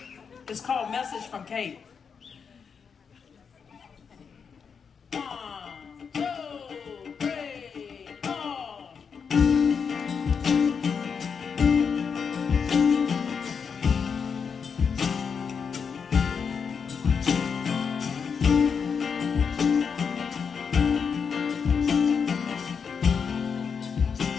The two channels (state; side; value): quieter; right; 6.3 dB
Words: It's called Message from Kate. 1, 2, 3, 4.